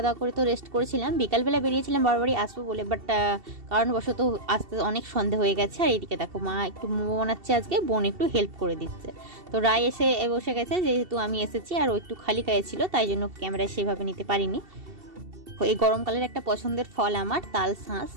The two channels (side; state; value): left; late; 2.7 ms